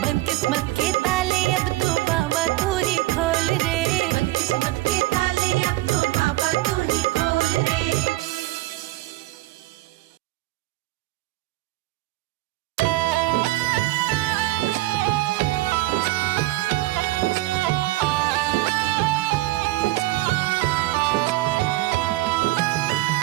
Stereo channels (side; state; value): left; quieter; 18.5 dB